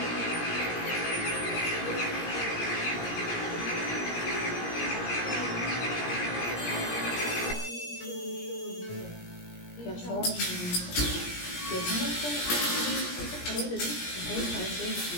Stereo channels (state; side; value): late; right; 17 ms